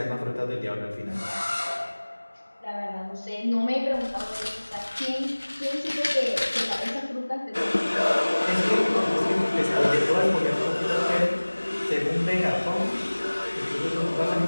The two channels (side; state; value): both; inverted; correlation -1.00